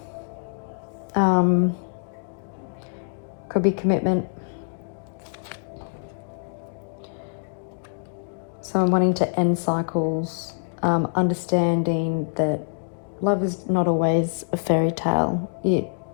could be commitment, someone wanting to end cycles, understanding that love is not always a fairy tale. It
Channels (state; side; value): silent; right; digital silence